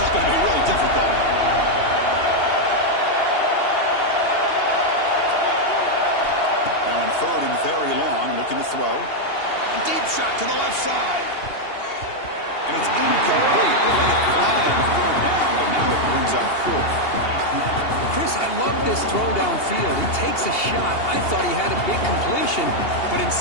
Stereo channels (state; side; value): late; right; 2.8 ms